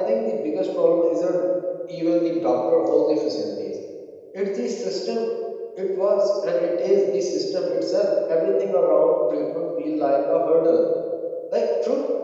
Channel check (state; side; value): identical; both; correlation 1.00